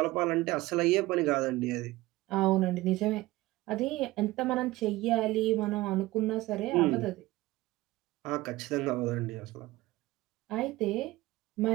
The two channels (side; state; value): left; quieter; 18.7 dB